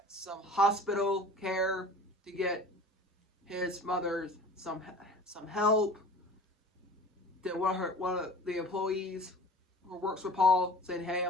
some hospital care, to get his mother some help. Then one of the employees who works with Paul saying, "Hey,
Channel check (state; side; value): normal; both; correlation 0.42